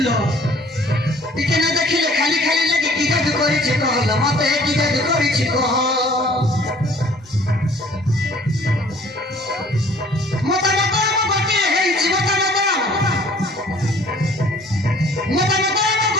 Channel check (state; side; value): normal; both; correlation 0.54